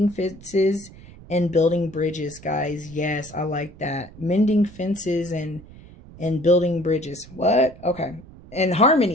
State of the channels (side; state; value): right; noise; rumble, 20 dB below the sound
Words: fences, and building bridges, guys. Yes, I like that. Mending fences and building bridges. What? Okay. And